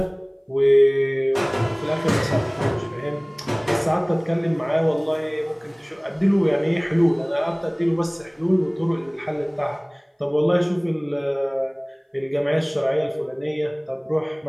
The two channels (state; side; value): identical; both; correlation 1.00